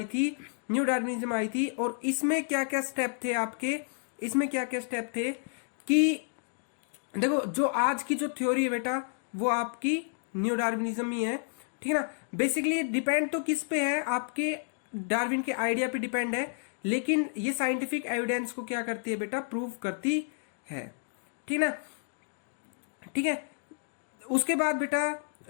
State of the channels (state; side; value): silent; right; digital silence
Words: थी, न्यू डार्विनिज्म आई थी। और इसमें क्या क्या स्टेप थे आपके, इसमें क्या क्या स्टेप थे कि देखो जो आज की जो थ्योरी है बेटा वो आपकी न्यू डार्विनिज्म ही है, ठीक है ना। बेसिकली डिपेंड तो किस पे है, आपके डार्विन के आइडिया पे डिपेंड है, लेकिन ये साइंटिफिक एविडेंस को क्या करती है बेटा, प्रूव करती है, ठीक है ना, ठीक है। उसके बाद बेटा